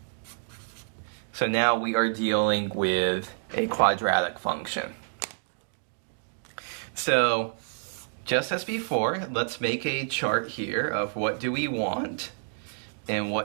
So now we are dealing with a quadratic function. So just as before, let's make a chart here of what do we want and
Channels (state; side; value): silent; left; digital silence